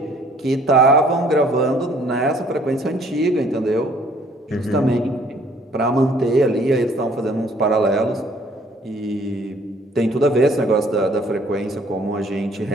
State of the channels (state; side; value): normal; both; correlation 0.59